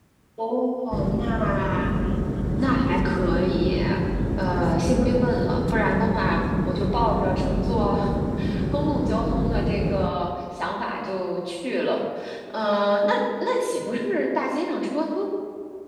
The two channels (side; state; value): both; identical; correlation 1.00